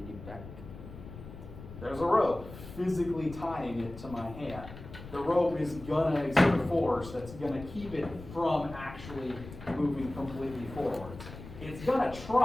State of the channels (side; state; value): left; noise; rumble, 14 dB below the sound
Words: need back. There's a rope physically tying it to my hand. The rope is going to exert a force that's going to keep it from actually moving completely forwards. It's going to